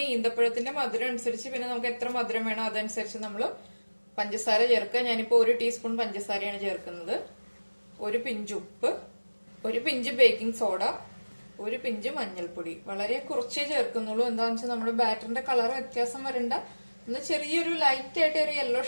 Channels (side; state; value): both; inverted; correlation -1.00